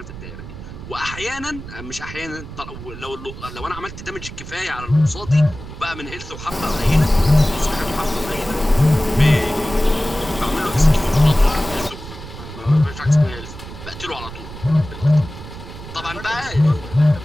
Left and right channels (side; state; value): right; noise; rumble, 12 dB below the sound